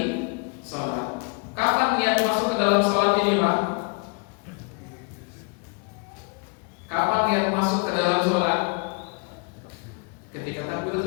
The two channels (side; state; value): right; quieter; 33.2 dB